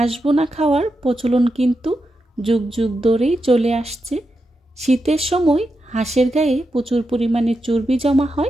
বোনা খাওয়ার প্রচলন কিন্তু যুগ যুগ ধরেই চলে আসছে। শীতের সময় হাঁসের গায়ে প্রচুর পরিমাণে চর্বি জমা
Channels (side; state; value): both; normal; correlation 0.87